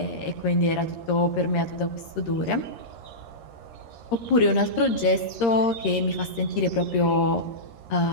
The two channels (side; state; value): right; late; 13 ms